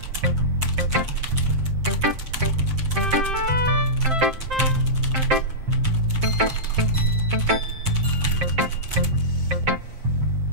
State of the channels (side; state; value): left; late; 7.6 ms